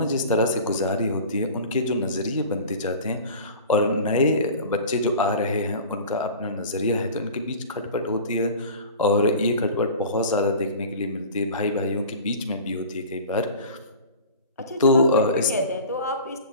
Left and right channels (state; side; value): inverted; both; correlation -0.39